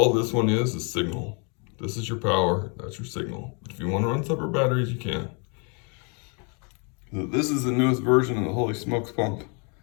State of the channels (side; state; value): right; quieter; 36.0 dB